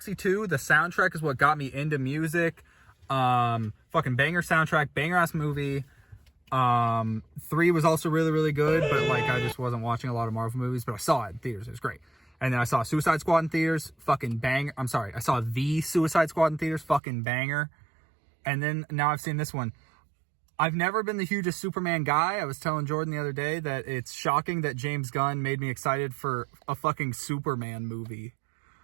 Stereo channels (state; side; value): drops out; left; at 17.0 s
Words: 2, the soundtrack is what got me into music. Fucking banger soundtrack, banger ass movie. 3 was also really, really good, but like I just wasn't watching a lot of Marvel movies, but I saw it in theaters. It was great. And then I saw Suicide Squad in theaters, fucking bang. I saw the Suicide Squad in theaters, fucking banger. And then now I've seen this one. I've never been the hugest Superman guy. I was telling Jordan the other day that it's shocking that James Gunn made me excited for a fucking Superman movie.